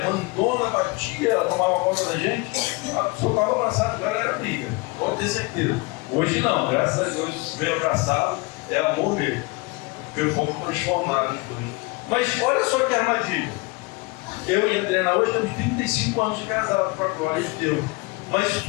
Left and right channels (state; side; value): quieter; right; 25.7 dB